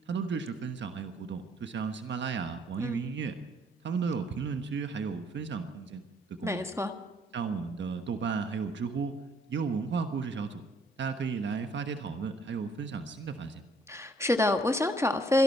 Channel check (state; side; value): normal; both; correlation 0.64